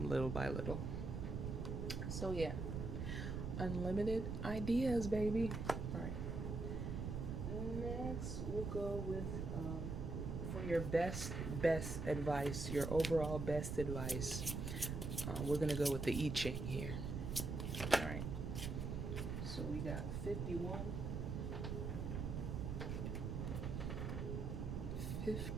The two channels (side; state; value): right; noise; rumble, 3 dB below the sound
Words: little by little. So yeah, unlimited ideas, baby. All right, next we'll go with for your best advice, your overall best advice. We're gonna go with the I Ching here. All right, so we got 51,